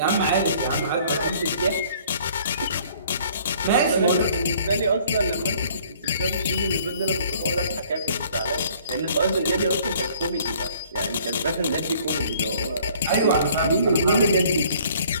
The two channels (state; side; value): inverted; both; correlation -0.57